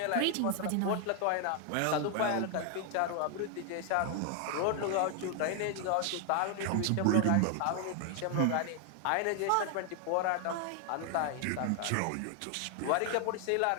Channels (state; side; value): different; both; correlation 0.00